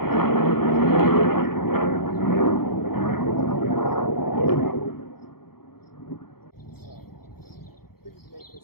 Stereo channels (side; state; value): right; late; 0.94 ms